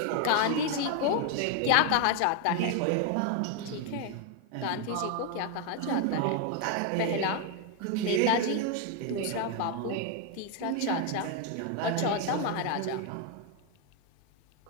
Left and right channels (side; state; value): both; different; correlation 0.01